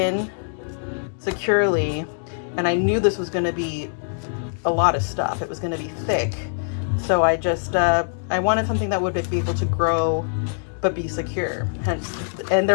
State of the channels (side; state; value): right; silent; digital silence